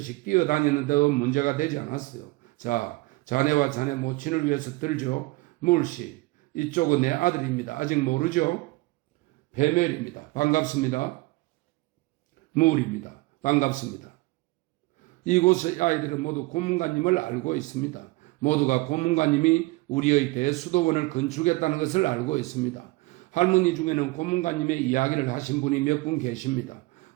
뛰어다니는데도 문제가 되지 않았어요. 자, 자네와 자네 모친을 위해서 들죠. 물씨, 이쪽은 내 아들입니다. 아직 모르죠? 베멜입니다. 반갑습니다. 물입니다. 반갑습니다. 이곳의 아이들은 모두 고문관님을 알고 있습니다. 모두가 고문관님이 우리의 대수도원을 건축했다는 것을 알고 있습니다. 할머니 중에는 고문관님의 이야기를 하신 분이 몇 분 계십니다.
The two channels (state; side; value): quieter; left; 22.2 dB